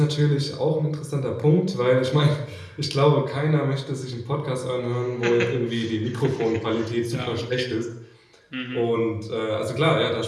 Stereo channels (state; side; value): identical; both; correlation 1.00